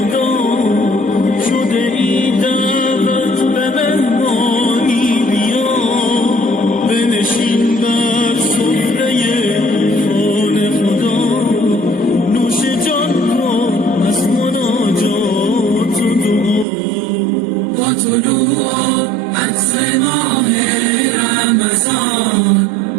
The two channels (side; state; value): left; drops out; at 16.7 s